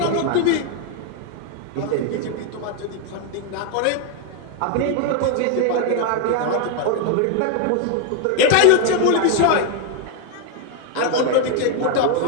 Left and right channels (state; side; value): different; both; correlation 0.01